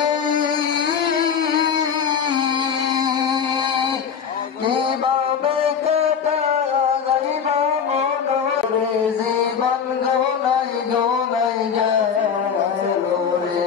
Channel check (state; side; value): quieter; right; 7.1 dB